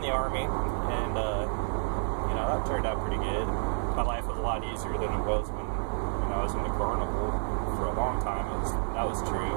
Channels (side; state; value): left; silent; digital silence